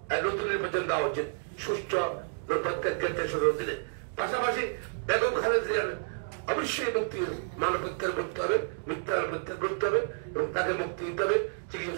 নতুন নির্বাচন দেওয়া উচিত সুষ্ঠু প্রত্যেকের দিনে। পাশাপাশি বেগম খালেদা জিয়ার অবশ্যই মুক্তি, মানব প্রত্যাহার করতে হবে, মিথ্যা প্রত্যাহার করতে হবে এবং তাকে মুক্তি দিতে হবে,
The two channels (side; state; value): left; silent; digital silence